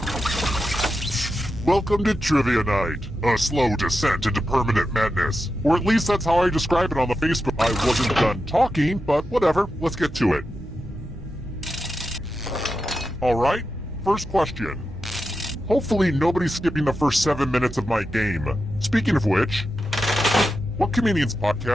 Welcome to Trivia Night, a slow descent into permanent madness. Or at least that's how I describe it on the Facebook. I wasn't done talking, but whatever, let's get to it. Alright, first question. Hopefully nobody's skipping the first 7 minutes of my game. Speaking of which, what comedian's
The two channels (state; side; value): normal; both; correlation 0.89